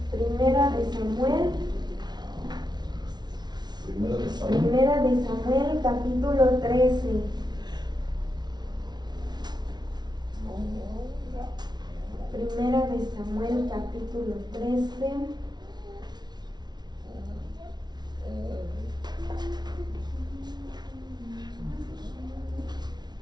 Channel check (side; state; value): left; late; 0.20 ms